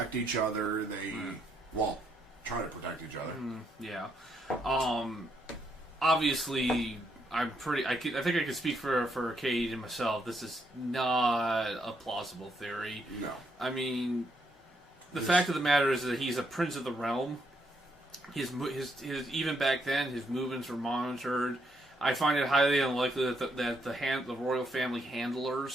each other. They, try to protect each other. Yeah. Obviously, I think I could speak for Kayde and myself. This is not a plausible theory. No. I mean, the fact of the matter is that he's a prince of the realm. His even back then, his movements were monitored. I find it highly unlikely that the royal family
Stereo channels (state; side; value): normal; both; correlation 0.76